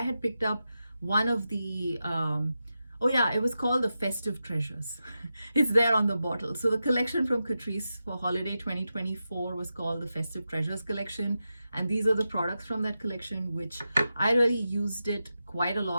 had picked up one of the, oh yeah, it was called the Festive Treasures. It's there on the bottle. So the collection from Catrice for holiday 2024 was called the Festive Treasures collection. And these are the products from that collection, which I really used it quite a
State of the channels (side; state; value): both; inverted; correlation -0.90